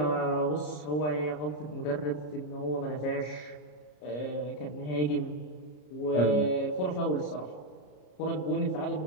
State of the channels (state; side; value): late; right; 33 ms